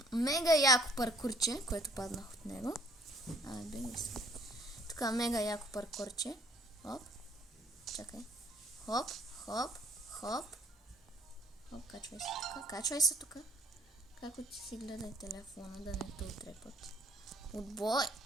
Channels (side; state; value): both; normal; correlation 0.59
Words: мега яко паркурче, което паднах от него. Беги се. Така, мега яко паркурче. Хоп. Чакай. Хоп, хоп, хоп. Хоп, качвай се тук. Качвай се тук. Како ти си гледай телефона, да не те отрепат. Отбой!